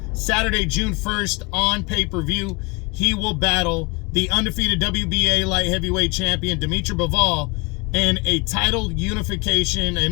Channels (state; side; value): quieter; right; 28.2 dB